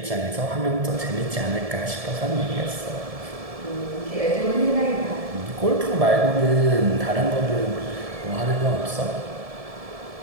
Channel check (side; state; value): left; late; 1.7 ms